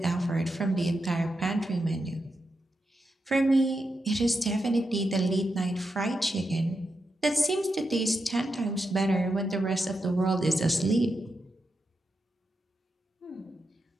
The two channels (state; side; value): normal; both; correlation 0.86